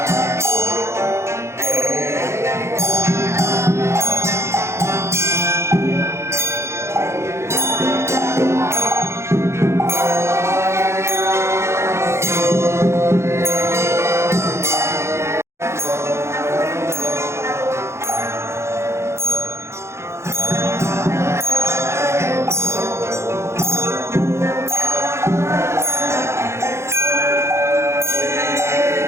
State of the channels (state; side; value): late; left; 0.13 ms